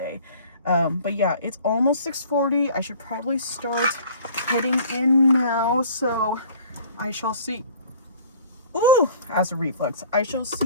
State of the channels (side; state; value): both; inverted; correlation -0.49